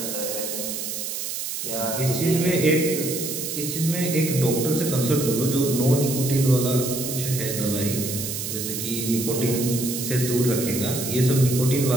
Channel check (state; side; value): noise; right; hiss, 4 dB below the sound